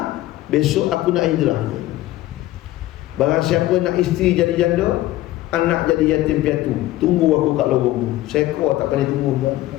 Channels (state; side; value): quieter; right; 15.9 dB